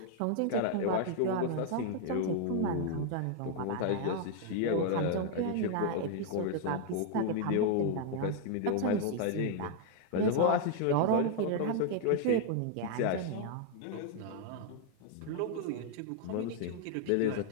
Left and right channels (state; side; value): different; both; correlation 0.00